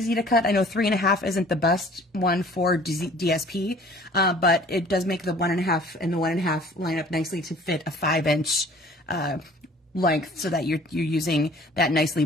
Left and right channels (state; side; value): normal; both; correlation 0.51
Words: to cut. I know 3.5 isn't the best one for DSP, but it does make the 1.5 and the 1.5 line up nicely to fit a 5-inch length, so that you're using that nicely